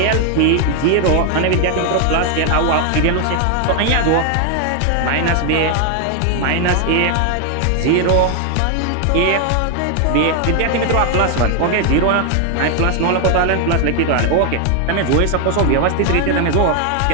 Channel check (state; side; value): different; both; correlation 0.01